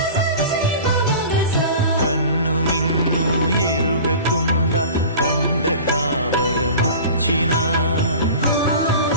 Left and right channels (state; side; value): inverted; both; correlation -0.38